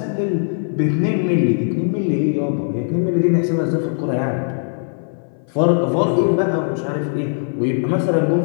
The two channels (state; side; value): silent; right; 56 dB below the other